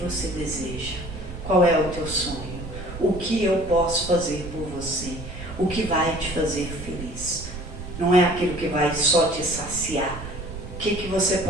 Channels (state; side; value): noise; right; rumble, 10 dB below the sound